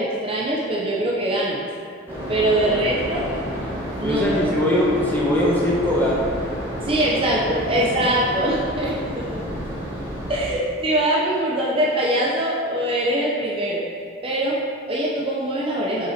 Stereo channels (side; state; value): both; normal; correlation 0.32